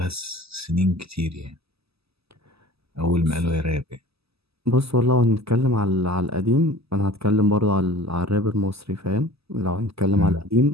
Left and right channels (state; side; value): late; left; 0.78 ms